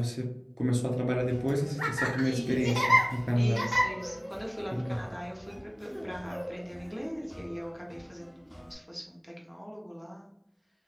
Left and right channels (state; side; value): identical; both; correlation 1.00